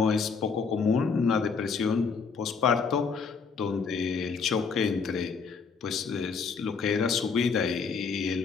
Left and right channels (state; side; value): quieter; right; 5.4 dB